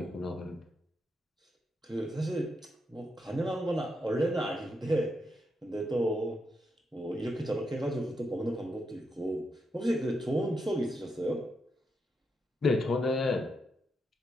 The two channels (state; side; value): normal; both; correlation 0.82